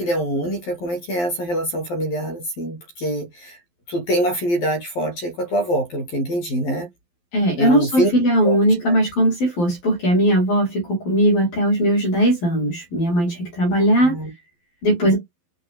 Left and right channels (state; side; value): late; right; 12 ms